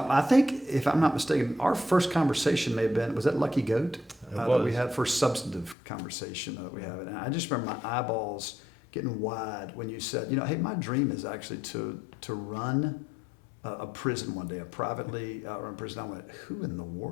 I think, if I'm not mistaken, our first conversation may have been, was that Lucky Goat? That we had first substantive conversation that we have. And I just remember my eyeballs getting wide when you said, hey, my dream is actually to run a prison one day, a privately run prison. I went, who in the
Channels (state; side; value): drops out; right; at 5.8 s